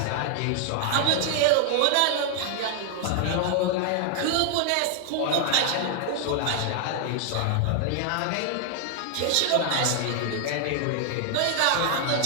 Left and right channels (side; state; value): both; different; correlation 0.00